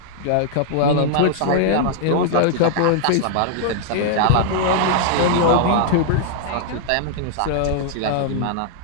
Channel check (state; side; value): different; both; correlation -0.01